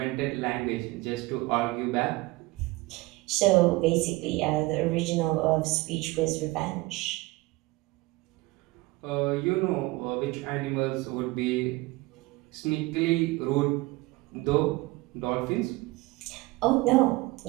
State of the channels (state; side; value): quieter; left; 21.7 dB